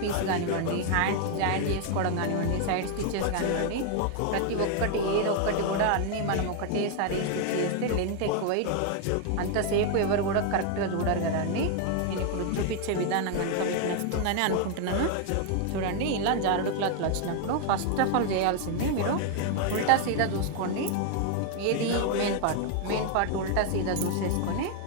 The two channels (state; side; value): different; both; correlation 0.00